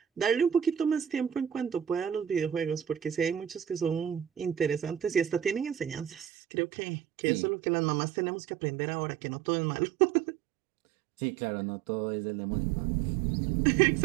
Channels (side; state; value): left; drops out; at 6.2 s